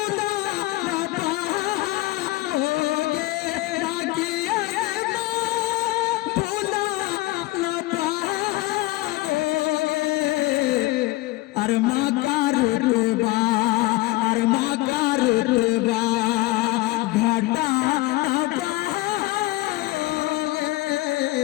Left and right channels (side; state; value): right; quieter; 19.5 dB